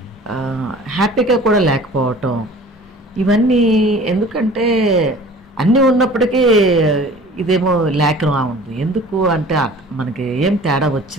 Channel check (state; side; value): normal; both; correlation 0.46